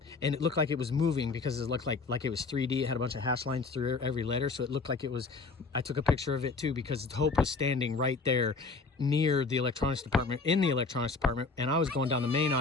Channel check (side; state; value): right; quieter; 4.2 dB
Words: And it looked like it was moving because it looked like it was 3D. It had a bunch of hash lines through every letter. So it looked like it was, I took a picture of it too, because Hope was standing right there near the electronics department, in the electronics department. And I was going down the main